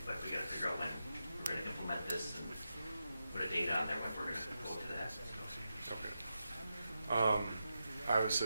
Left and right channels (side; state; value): both; inverted; correlation -0.88